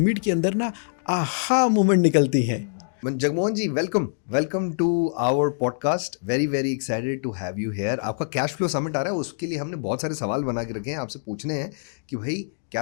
के अंदर ना आहा मोमेंट निकलती है। Jagmohan ji, welcome to our podcast. Very very excited to have you here. आपका कैश फ्लो समिट आ रहा है, उसके लिए हमने बहुत सारे सवाल बना के रखे हैं, आपसे पूछने हैं कि भाई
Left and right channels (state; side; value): silent; right; digital silence